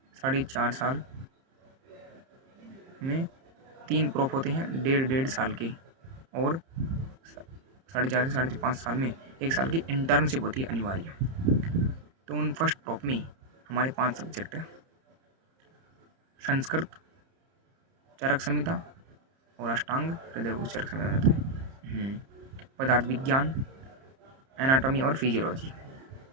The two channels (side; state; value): left; late; 30 ms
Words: 4.5 साल में 3 प्रोफ होते हैं, 1.5 साल के, और 4.5 से 5.5 साल में 1 साल की इंटर्नशिप होती है अनिवार्य। तो उन फर्स्ट प्रोफ में हमारे 5 सब्जेक्ट है: संस्कृत, चरक संहिता और अष्टांग हृदय उस चरक संहिता रहता है, पदार्थ विज्ञान, एनाटॉमी और फिजियोलॉजी,